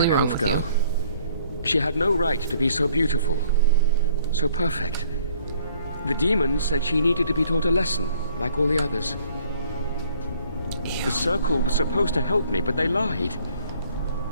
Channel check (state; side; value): inverted; both; correlation -0.60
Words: wrong with you. She had no right to be so beautiful. So perfect. The demons said she needed to be taught a lesson, like all the others. Ew. The Circle was supposed to help me, but they lied.